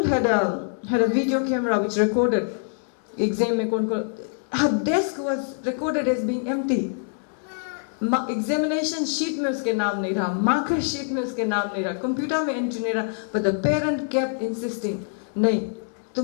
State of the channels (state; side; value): silent; right; 62 dB below the other